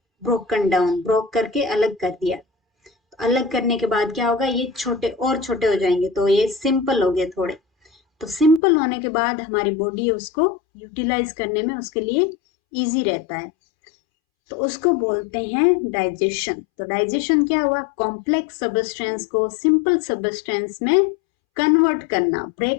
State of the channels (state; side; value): drops out; right; at 8.6 s